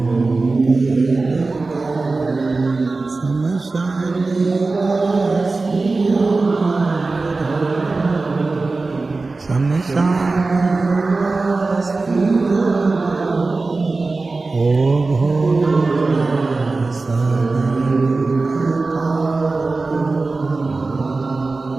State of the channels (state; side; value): quieter; left; 3.6 dB